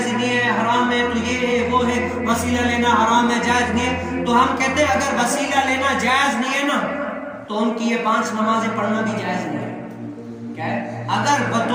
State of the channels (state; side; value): identical; both; correlation 1.00